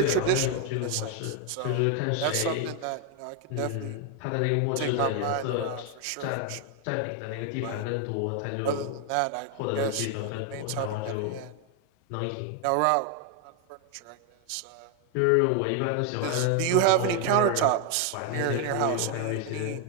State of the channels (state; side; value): different; both; correlation 0.01